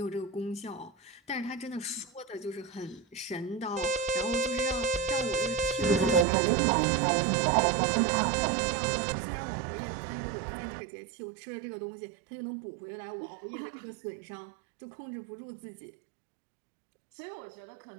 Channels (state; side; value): drops out; left; at 6.2 s